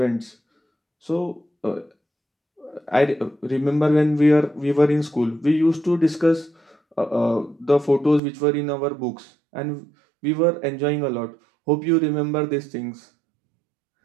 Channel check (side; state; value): left; drops out; at 8.2 s